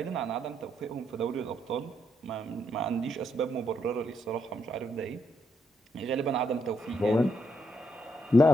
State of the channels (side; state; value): both; normal; correlation 0.77